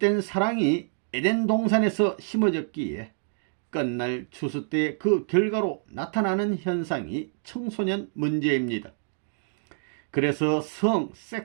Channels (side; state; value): left; silent; digital silence